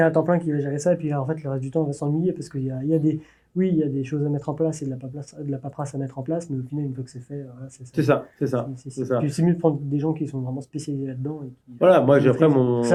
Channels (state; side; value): identical; both; correlation 1.00